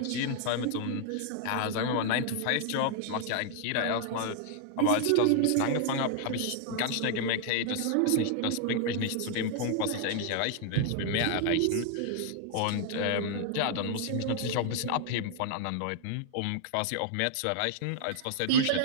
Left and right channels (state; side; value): different; both; correlation 0.00